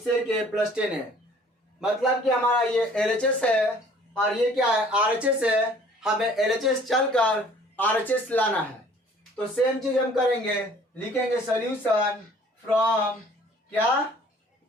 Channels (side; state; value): both; normal; correlation 0.54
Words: A plus 10 है. मतलब कि हमारा ये LHS है और ये क्या है? RHS है. हमें LHS चलकर RHS लाना है. तो सेम चीज हम करेंगे, लिखेंगे सोल्यूशन फ्रॉम क्या?